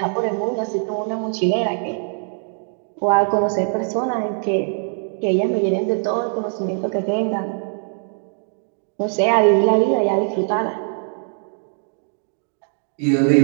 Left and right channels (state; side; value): silent; left; 60 dB below the other